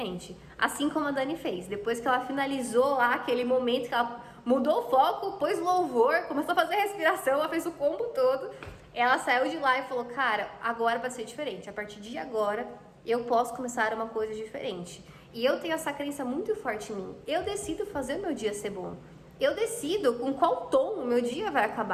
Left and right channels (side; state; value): both; identical; correlation 1.00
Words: Assim como a Dani fez. Depois que ela finalizou lá aquele momento que ela mudou o foco, pôs louvor, começou a fazer respiração, ela fez o combo todo. Ela saiu de lá e falou, cara, agora vai ser diferente. A partir de agora, eu posso começar uma coisa diferente. E eu tenho essa crença muito forte em mim. Eu decido fazer o meu dia ser bom. Eu decido com qual tom o meu dia vai